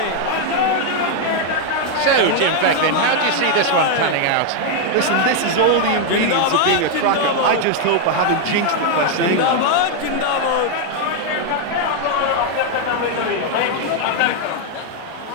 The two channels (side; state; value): both; different; correlation 0.00